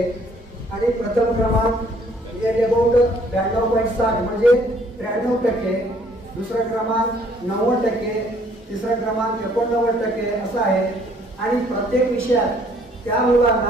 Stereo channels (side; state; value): both; normal; correlation 0.62